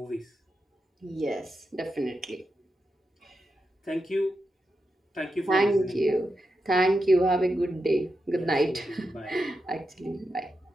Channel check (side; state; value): both; normal; correlation 0.87